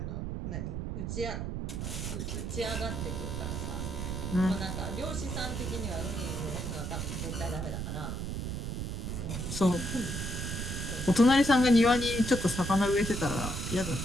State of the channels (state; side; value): noise; right; rumble, 3 dB below the sound